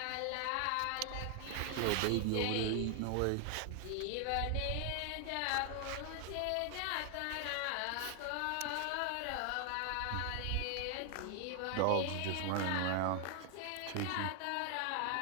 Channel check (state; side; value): different; both; correlation 0.00